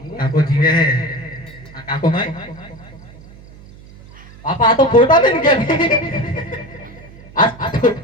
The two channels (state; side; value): noise; right; hum, 20 dB below the sound